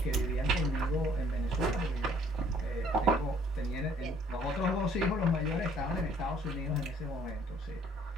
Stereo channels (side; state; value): both; normal; correlation 0.60